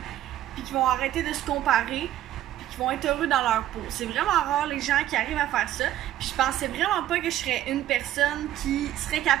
puis qu'ils vont arrêter de se comparer, qui vont être heureux dans leur peau. C'est vraiment rare les gens qui arrivent à faire ça. Puis je pensais vraiment pas que je serais une personne qui serait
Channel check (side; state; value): left; quieter; 12.9 dB